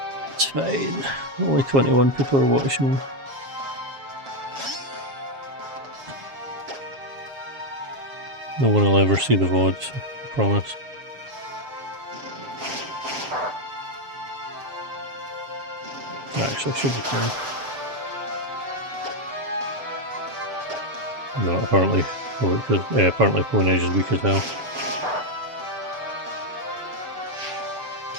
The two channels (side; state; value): left; late; 7.3 ms